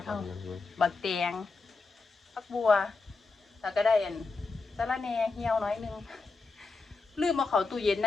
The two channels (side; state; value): right; quieter; 4.0 dB